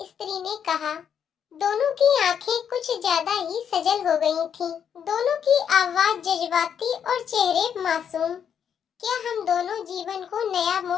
स्त्री ने कहा। दोनों की आंखें कुछ ज्यादा ही सजल हो गई थीं। दोनों की आवाज जज्बाती और चेहरे मासूम। क्या हम दोनों जीवन को नया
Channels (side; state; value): right; quieter; 8.1 dB